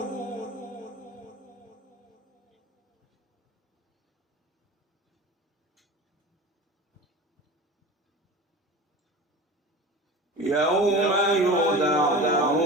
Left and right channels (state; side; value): normal; both; correlation 0.34